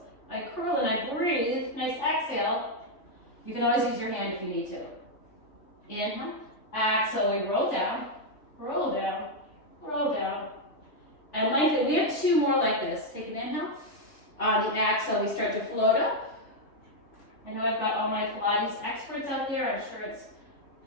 I curl and I breathe. Nice exhale. You can always use your hand if you need to. Inhale, exhale, we roll down, roll down, roll down. And lengthen. We have two more like this. Take an inhale. On the exhale, we start to float up. I know I've got all my Pilates experts out there. I'm sure it's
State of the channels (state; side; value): late; right; 3.4 ms